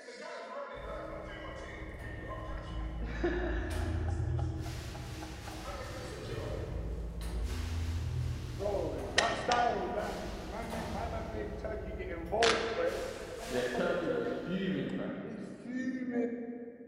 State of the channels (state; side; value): identical; both; correlation 1.00